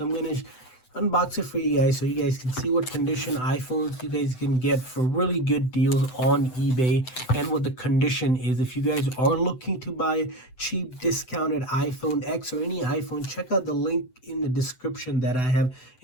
I'm going to unbox it for you guys so you guys can see what condition iPhones you guys can get for really good deals on eBay and what the condition is. If you guys are looking to buy a cheap discounted iPhone X or any iPhone, check out the link in the description that I have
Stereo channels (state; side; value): late; right; 7.9 ms